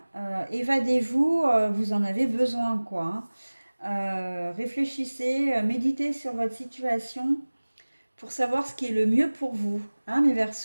évadez-vous, vous en avez besoin, quoi, hein. Réfléchissez, méditez sur votre situation pour savoir ce qui est le mieux pour vous, hein, mes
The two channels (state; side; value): inverted; both; correlation -1.00